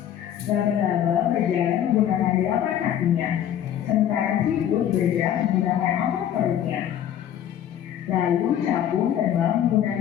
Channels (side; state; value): right; quieter; 10.4 dB